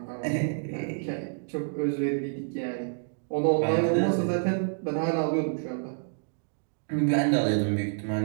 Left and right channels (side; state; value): left; silent; digital silence